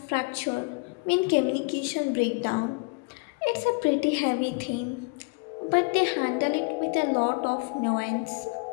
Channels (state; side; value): quieter; right; 31.3 dB